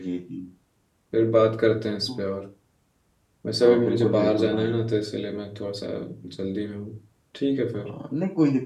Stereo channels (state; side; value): identical; both; correlation 1.00